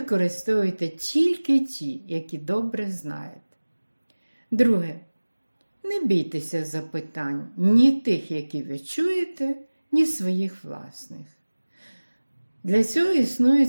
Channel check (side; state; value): both; inverted; correlation -1.00